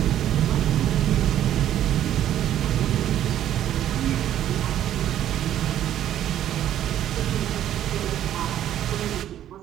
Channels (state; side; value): quieter; left; 11.5 dB